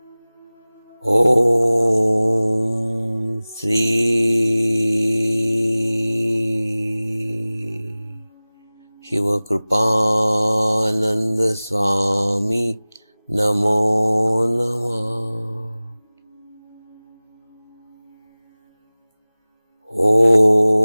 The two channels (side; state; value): both; inverted; correlation -0.98